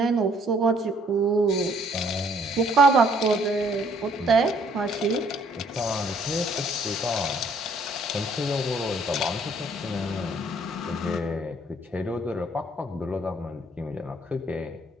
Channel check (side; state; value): both; normal; correlation 0.63